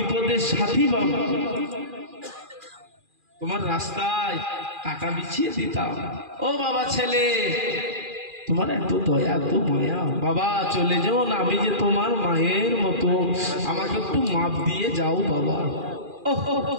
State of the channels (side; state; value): left; late; 2.4 ms